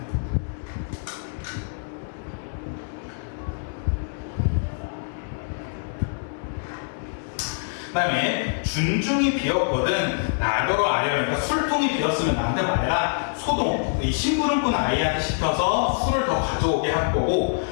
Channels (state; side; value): silent; right; 62 dB below the other